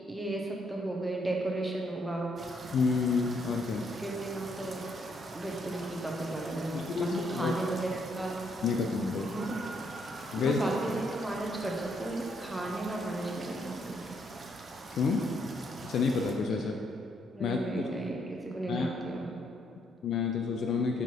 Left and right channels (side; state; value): both; normal; correlation 0.73